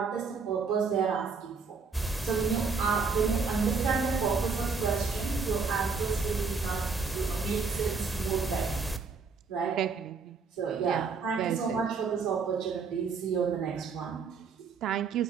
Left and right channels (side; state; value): left; quieter; 4.9 dB